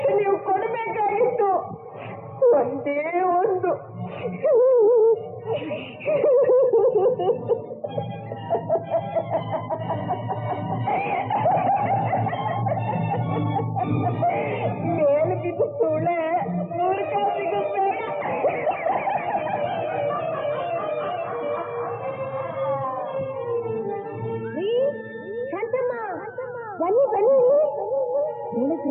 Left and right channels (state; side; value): identical; both; correlation 1.00